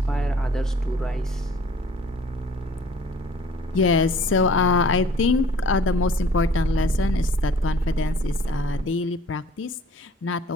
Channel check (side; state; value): both; normal; correlation 0.52